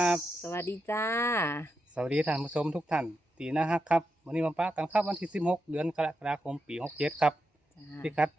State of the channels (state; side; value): normal; both; correlation 0.86